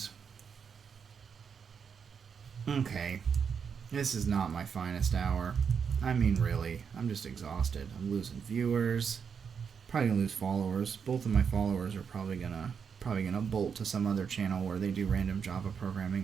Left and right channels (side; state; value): left; quieter; 6.6 dB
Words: Okay. This is not my finest hour. I mean, really. I'm just exhausted. I'm losing viewers. Probably gonna lose followers. Both of my followers are probably gonna bolt to some other channel where they do random Java